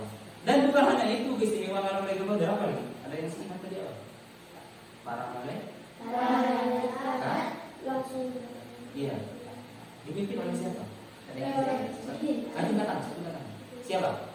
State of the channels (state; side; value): identical; both; correlation 1.00